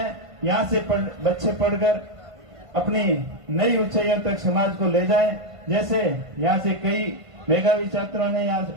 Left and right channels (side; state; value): left; late; 1.5 ms